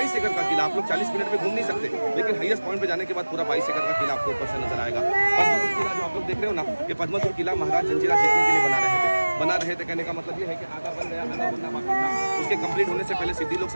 एकड़ का किला। आप लोग 40 मिनट में घूम नहीं सकते, लेकिन हाईएस्ट पॉइंट पे जाने के बाद पूरा 22 एकड़ का किला आपको ऊपर से नजर आएगा। पद्मपुर किला जो आप लोग देख रहे हो ना, ये पद्मपुर किला महाराज जंजीरा जीतने के लिए बना रहे थे। कहने का मतलब ये है कि आधा बन गया, आधा बनना बाकी था। उसके कंप्लीट होने से पहले सिद्दी लोग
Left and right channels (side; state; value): both; inverted; correlation -1.00